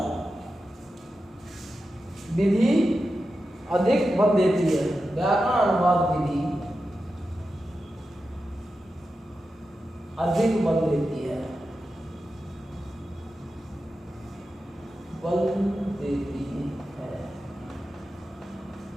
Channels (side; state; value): both; normal; correlation 0.91